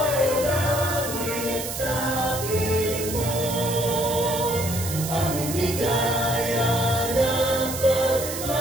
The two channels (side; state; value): right; noise; hiss, 7 dB below the sound